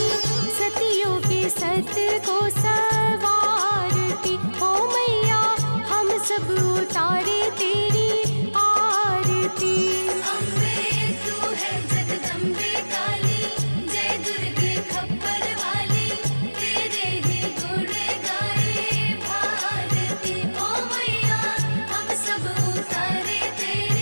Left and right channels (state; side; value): inverted; both; correlation -1.00